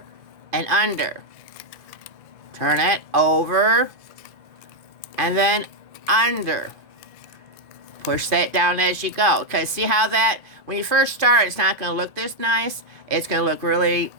and under. Turn it over and then under. Push that down as you go. Because see how that, when you first start, it's not going to look this nice. It's going to look really,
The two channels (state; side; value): late; left; 2.5 ms